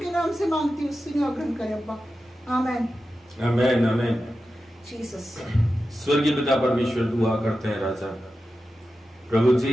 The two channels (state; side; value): normal; both; correlation 0.92